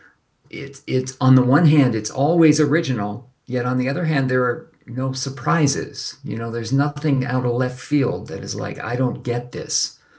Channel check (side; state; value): both; identical; correlation 1.00